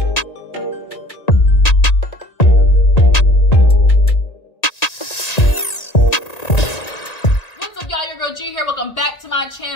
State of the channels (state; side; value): late; right; 1.9 ms